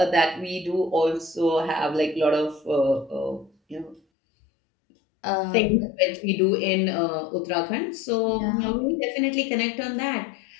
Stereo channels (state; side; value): drops out; right; at 4.0 s